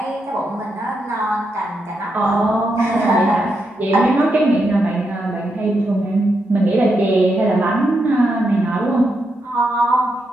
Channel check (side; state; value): both; normal; correlation 0.83